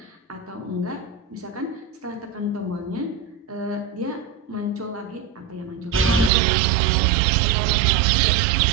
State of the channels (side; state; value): left; drops out; at 6.3 s